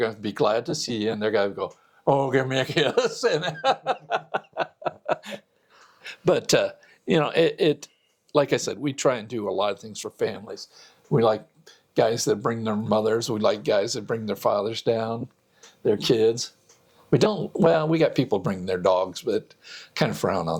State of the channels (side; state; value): both; identical; correlation 1.00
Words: to be glad to see you, and they're going to go, oh, give me a kiss. But, it like I said, we try and do a lot of things for families. We like guys that bring their mothers. We like guys that bring their fathers down, their kids. We got people bringing their dogs, but kind of frown